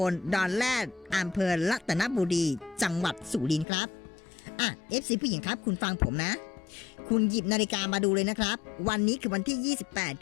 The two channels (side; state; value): right; drops out; at 3.7 s